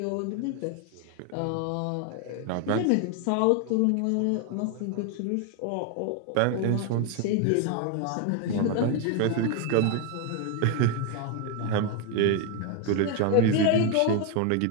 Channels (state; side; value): different; both; correlation 0.01